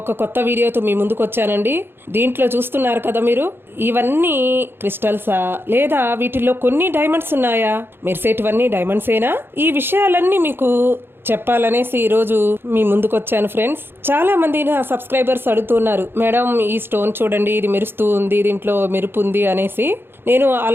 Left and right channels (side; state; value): left; late; 0.10 ms